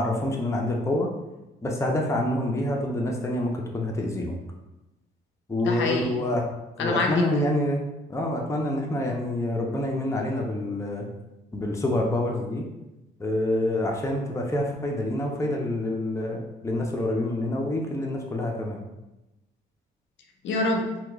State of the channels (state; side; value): normal; both; correlation 0.63